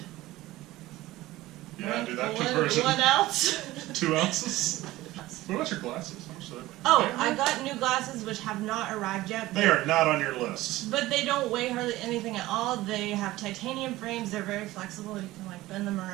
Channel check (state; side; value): quieter; left; 17.5 dB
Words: Yeah, do that conversion. 1 ounce. 2 ounces? What about your glasses? How much do they weigh? Oh, I got new glasses which have not arrived yet. They are not on your list. But they don't weigh hardly anything at all. They have titanium frames. They're very flexible. You can like bend them